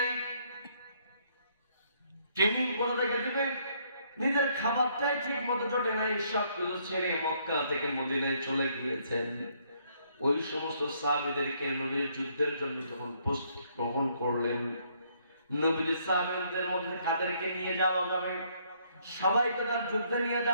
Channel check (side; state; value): both; inverted; correlation -0.68